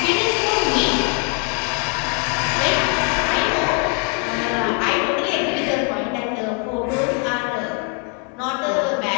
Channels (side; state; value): right; quieter; 35.9 dB